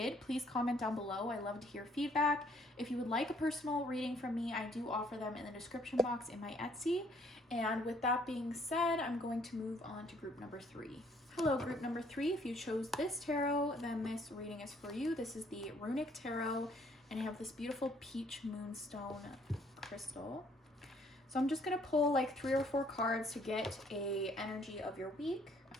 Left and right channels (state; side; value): normal; both; correlation 0.64